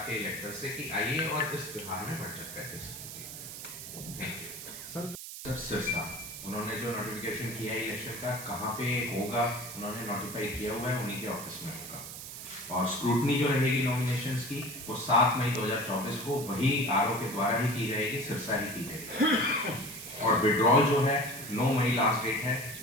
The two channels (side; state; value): right; noise; hiss, 10 dB below the sound